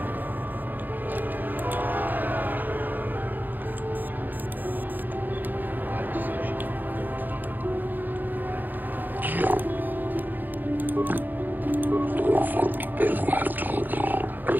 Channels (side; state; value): left; late; 0.087 ms